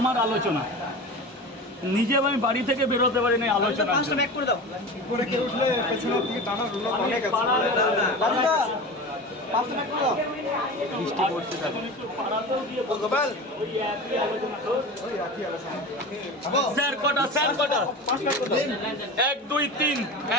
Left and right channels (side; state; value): both; normal; correlation 0.30